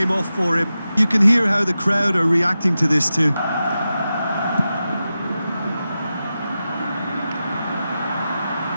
off for him. You can hear how the crowd are reacting to this too.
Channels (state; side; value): inverted; both; correlation -0.92